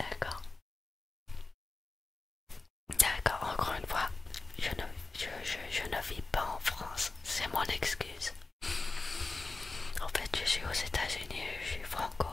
D'accord, encore une fois, je ne vis pas en France, c'est mon excuse. En fait, je suis aux États-Unis, je suis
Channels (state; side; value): quieter; right; 3.6 dB